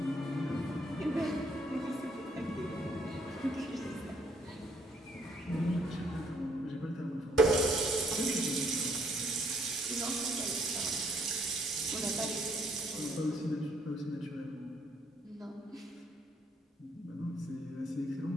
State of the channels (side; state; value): both; normal; correlation 0.67